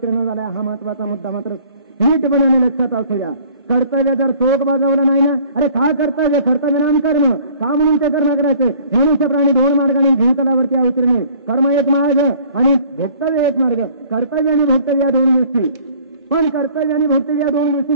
झाला. हा महत्वाचा मुद्दा मात्र नीटपणे लक्षात असू द्या. कर्तव्य जर चोख बाजवलं नाही ना, अरे का कर्तव्य कर्तव्य नाम कर्म का म्हणून ते करणं करायचं. मनुष्य प्राणी दोन मार्गाने भूतलावरती अवतीर्ण. कर्म एक मार्ग आणि भोक्तव्य एक मार्ग. कर्तव्य आणि भोक्तव्य या दोन गोष्टी. पण कर्तव्य आणि भोक्तव्य या दोन गोष्टी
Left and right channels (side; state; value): both; inverted; correlation -0.54